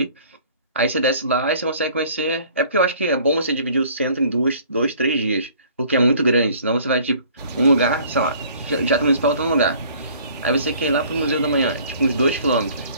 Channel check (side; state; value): both; inverted; correlation -0.54